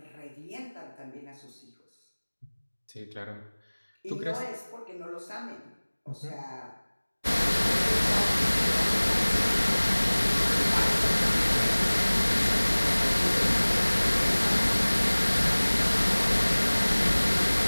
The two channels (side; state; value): both; inverted; correlation -1.00